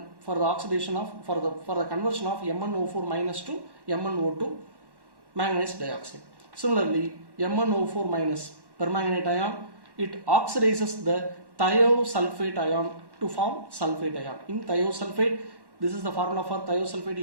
for the oxidation of for the conversion of MnO4- to MnO2 manganese dioxide. Similarly, MnO4- permanganate ion, it oxidizes the thiosulfate ion to form sulfate ion. In thiosulfate, this is the formula for thiosulfate,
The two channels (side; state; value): left; late; 1.1 ms